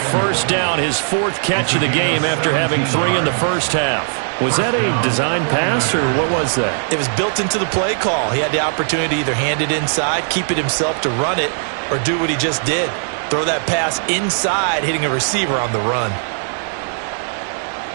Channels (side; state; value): left; silent; digital silence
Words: down, his 4th catch of the game after having 3 in the first half. Was that a design pass, or what was that? It was built into the play call. He had the opportunity to either hand it inside, keep it himself to run it, or do what he just did. Throw that pass inside, hitting a receiver on the run.